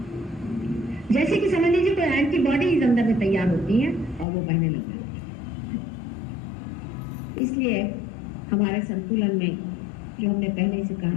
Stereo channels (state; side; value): drops out; right; at 4.2 s